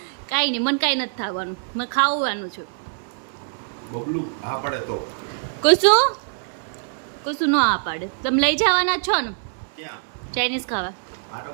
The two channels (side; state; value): left; silent; digital silence